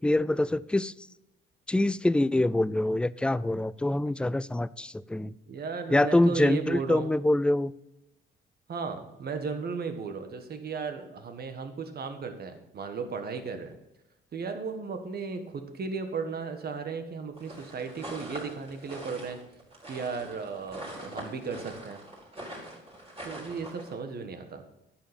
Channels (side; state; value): both; normal; correlation 0.85